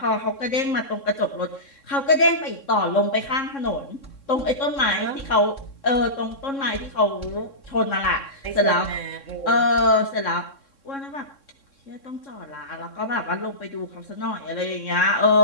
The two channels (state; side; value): late; right; 3.6 ms